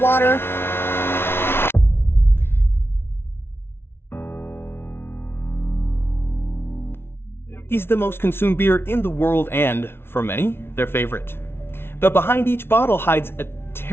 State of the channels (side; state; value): right; late; 0.12 ms